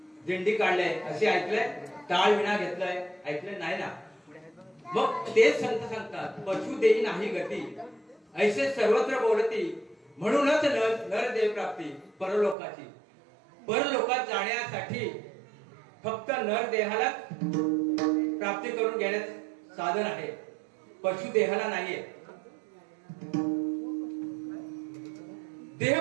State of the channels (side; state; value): left; drops out; at 12.6 s